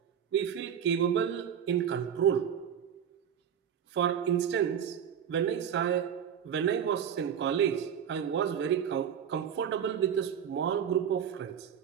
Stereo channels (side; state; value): left; quieter; 8.5 dB